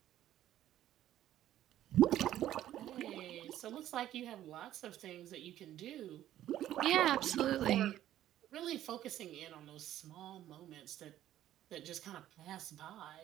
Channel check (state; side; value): quieter; left; 12.6 dB